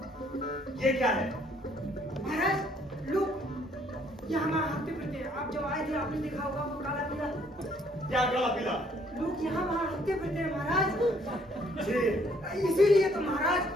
ये क्या है? महाराज लोग ये हमारा हफ्ते फिरते हैं। आप जब आए थे आपने देखा होगा वो काला पीला। क्या काला पीला? लोग यहाँ वहाँ हफ्ते फिरते हैं महाराज। जी इसीलिए तो महाराज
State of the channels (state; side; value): normal; both; correlation 0.64